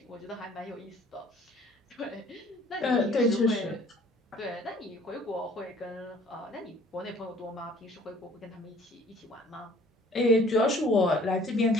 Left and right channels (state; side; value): normal; both; correlation 0.54